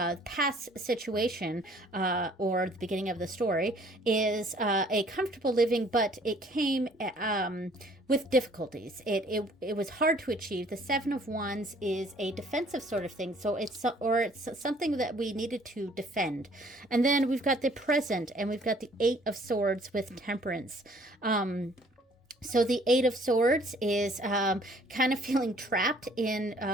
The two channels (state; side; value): normal; both; correlation 0.58